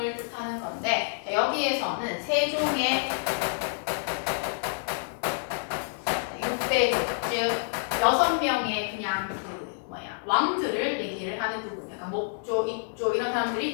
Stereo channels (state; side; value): silent; right; digital silence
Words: 뜻하는 건데 여기에서는 세종의 6대조 즉 6명의 그냥 왕들을 얘기를 하는 부분. 약간 목조, 입조 이런 사람들